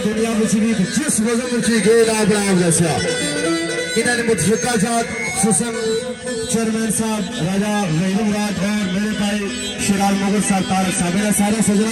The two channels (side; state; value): both; identical; correlation 1.00